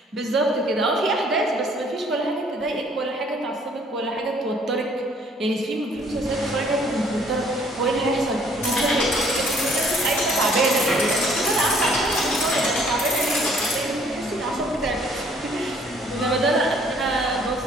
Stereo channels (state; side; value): normal; both; correlation 0.60